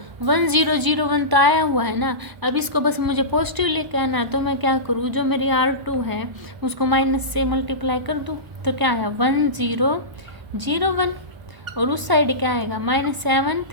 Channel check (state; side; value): late; left; 1.0 ms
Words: 1 0 0 1 तो आया हुआ है ना। अब इसको बस मुझे पॉजिटिव लेके आना है। तो मैं क्या करूँ, जो मेरी R2 है उसको माइनस से मल्टीप्लाई कर दूँ। तो क्या आया 1 0 0 1 और उस साइड क्या आएगा -7